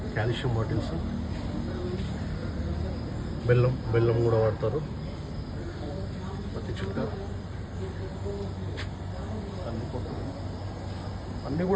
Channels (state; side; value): identical; both; correlation 1.00